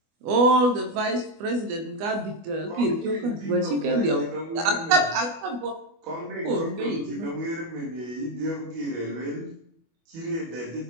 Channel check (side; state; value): left; late; 25 ms